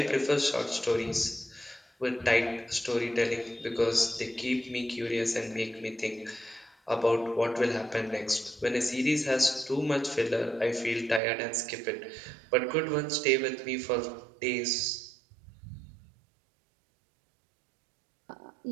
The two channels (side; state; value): left; drops out; at 11.2 s